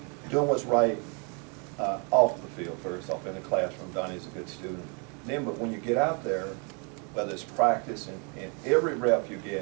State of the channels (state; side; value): quieter; left; 35.7 dB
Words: doing what's right off the field first, off in the classroom. Donnie's a good student. Then, but when you get out there, whether it's practice and every rep you